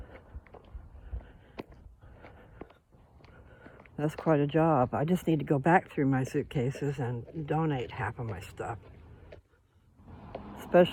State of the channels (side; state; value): both; identical; correlation 1.00